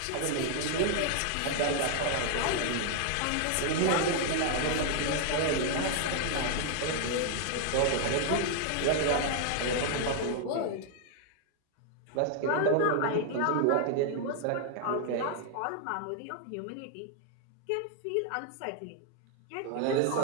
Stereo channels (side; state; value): both; different; correlation 0.00